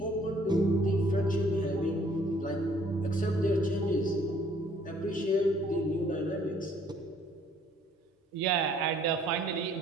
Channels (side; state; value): both; normal; correlation 0.60